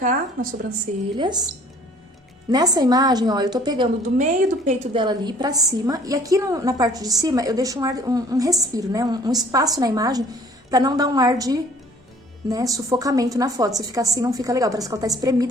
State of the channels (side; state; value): both; normal; correlation 0.55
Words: nas sobrancelhas. Nessa imagem, ó, eu tô pegando do meio do peito dela ali pra cima. E aqui na parte de cima, eu deixo um respiro, né? Um espaço na imagem pra não dar um ar de, né, sufocamento na foto. Se ficar assim, não fica legal. Parece que ela tá